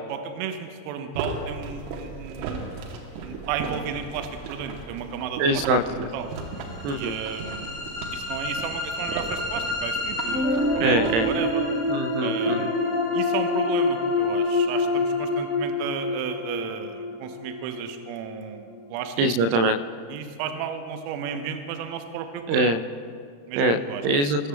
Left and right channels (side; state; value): left; late; 35 ms